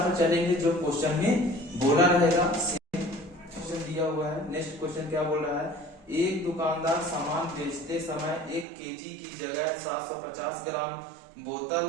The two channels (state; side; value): drops out; left; at 8.7 s